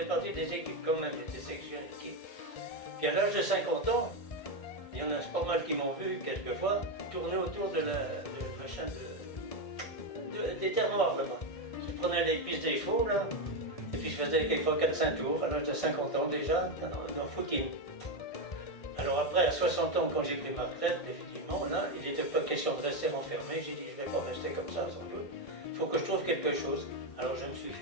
partie des équipes quand même, j'étais section d'équipe. Puis à l'âge de 50 ans, il y en a pas mal qui m'ont vu quelquefois tourner autour de des terres noires là-bas. Je prenais les pistes des chevaux là, et puis je faisais quelquefois 4-5 tours à l'âge de 50 ans déjà dans footing. Alors après, à 60 ans, quand j'ai pris ma retraite, effectivement, là, il n'était pas question de rester enfermé. J'ai dit, je ne vais pas rester comme ça sans doute. Il faut que je trouve quelque chose. Alors je me suis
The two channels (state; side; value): late; right; 1.6 ms